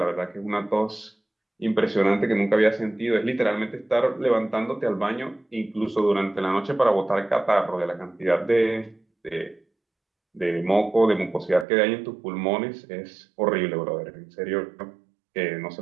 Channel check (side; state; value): left; drops out; at 11.7 s